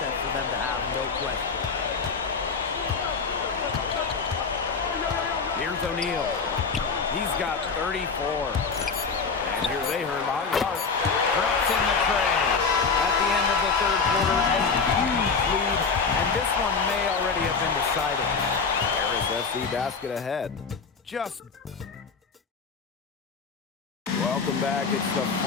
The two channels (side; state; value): right; quieter; 5.1 dB